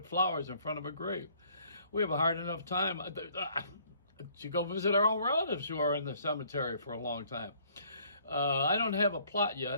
flowers in front of a grave. We have a hard enough time to go visit our own relatives who are in the cemetery for a long time. I don't have a plot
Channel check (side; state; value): both; inverted; correlation -0.61